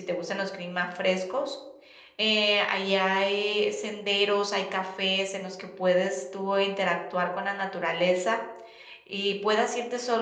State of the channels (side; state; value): both; identical; correlation 1.00